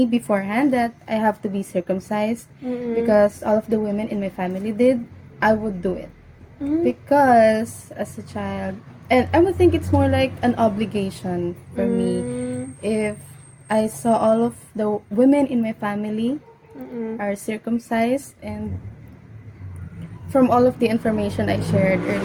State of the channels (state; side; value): identical; both; correlation 1.00